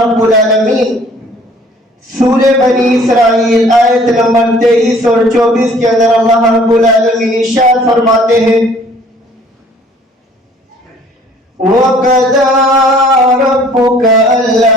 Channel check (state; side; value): normal; both; correlation 0.55